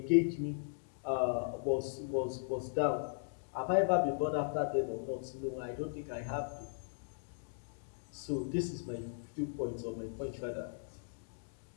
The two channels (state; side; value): silent; right; digital silence